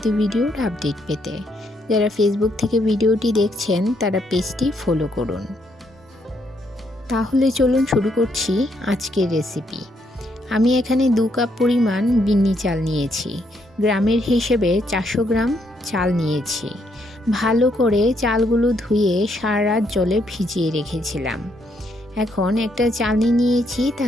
ভিডিওর আপডেট পেতে। যারা ফেসবুক থেকে ভিডিওটি দেখছেন তারা পেজটি ফলো করুন। তাহলে চলুন শুরু করছি আজকের রেসিপি। আমি এখানে 2 কাপ পরিমাণ বিন্নি চাল নিয়েছি। গ্রামের হিসেবে 400 গ্রাম চাল নিয়েছি। ভালো করে চালগুলো ধুয়ে সারা রাত জলে ভিজিয়ে রেখেছিলাম। এখন একটা চালনি নিয়েছি,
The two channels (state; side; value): normal; both; correlation 0.74